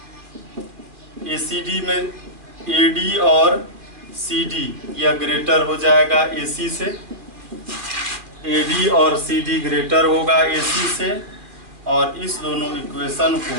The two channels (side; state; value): left; late; 2.4 ms